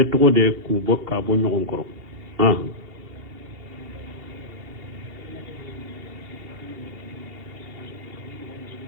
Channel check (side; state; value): left; late; 2.8 ms